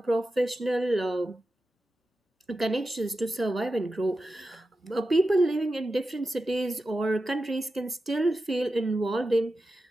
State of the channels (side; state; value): both; normal; correlation 0.92